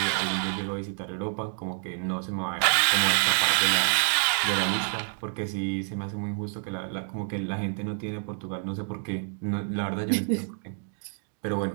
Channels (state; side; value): silent; left; 59 dB below the other